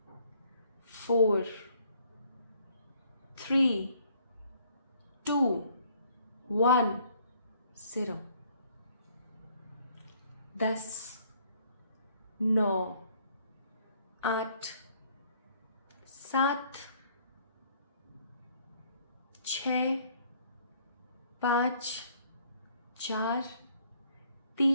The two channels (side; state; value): both; inverted; correlation -0.63